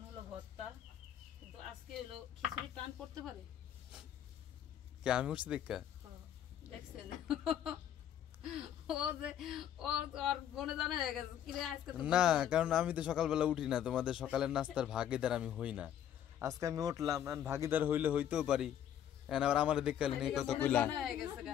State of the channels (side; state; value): right; quieter; 10.2 dB